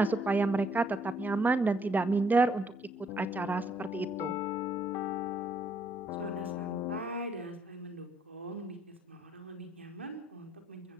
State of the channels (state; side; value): normal; both; correlation 0.70